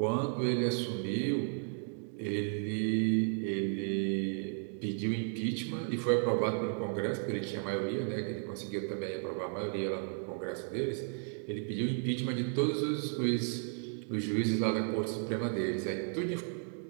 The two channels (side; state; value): left; silent; 55 dB below the other